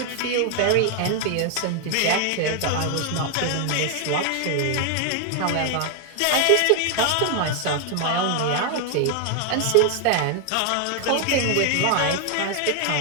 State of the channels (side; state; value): both; different; correlation 0.00